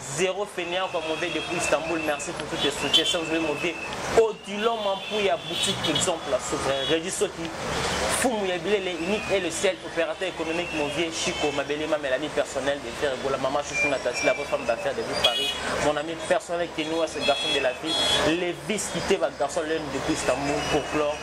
zéro fainéant comme on veut depuis Istanbul. Merci pour tous les soutiens. Sans oublier mon vieux Odilon Mampouya, boutique exemple, souverain, Régis Soki, Foumouya Bilele, unique et le seul opérateur économique, mon vieux Chico, ma belle ma l'ami personnel de faire la maman Chouchou Natassi, la vraie femme d'affaires de vous Paris, mon ami personnel qui est nous, ce garçon de la ville, les vis quittés, votre garçon l'un depuis Istanbul pour clore,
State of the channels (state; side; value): identical; both; correlation 1.00